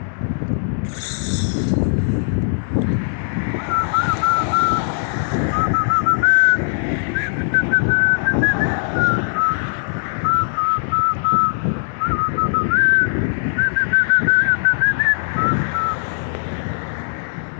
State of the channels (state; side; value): silent; right; digital silence